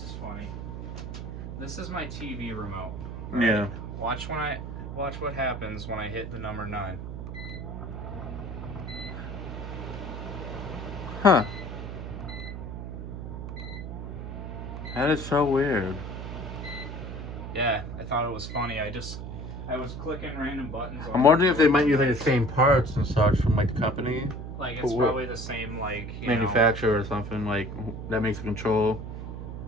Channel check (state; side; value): noise; right; hum, 7 dB below the sound